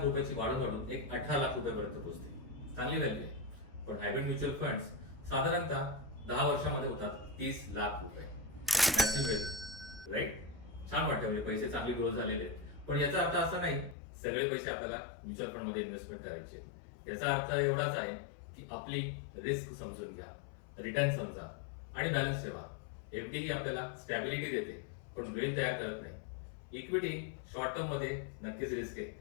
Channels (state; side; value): drops out; right; at 14.0 s